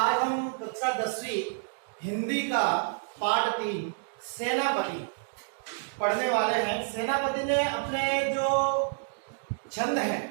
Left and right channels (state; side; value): silent; left; digital silence